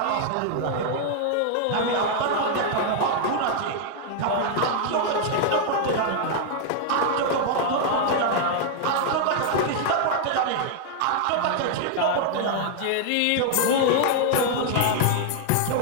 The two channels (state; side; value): different; both; correlation 0.00